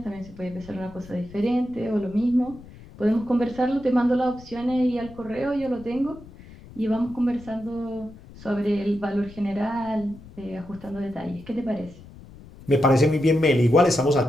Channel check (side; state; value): left; noise; rumble, 19 dB below the sound